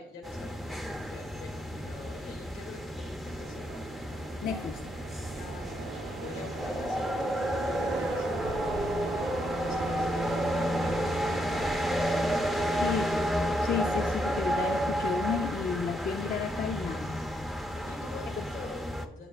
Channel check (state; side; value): normal; both; correlation 0.77